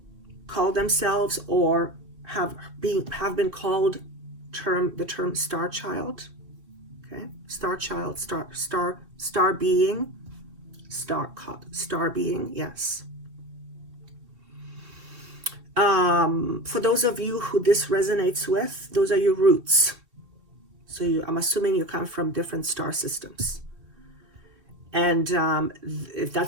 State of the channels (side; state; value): left; late; 2.6 ms